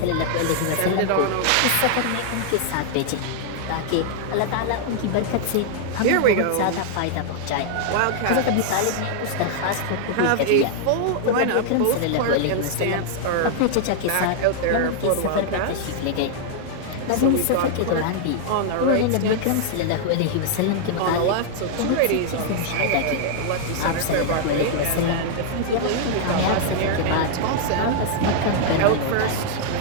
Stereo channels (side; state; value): both; different; correlation -0.01